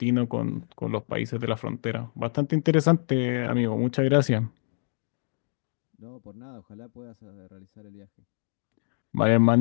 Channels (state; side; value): silent; right; digital silence